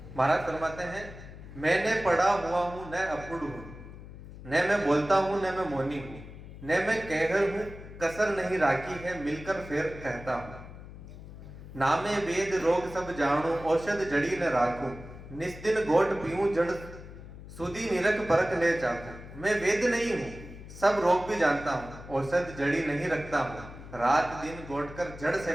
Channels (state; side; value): noise; left; hum, 15 dB below the sound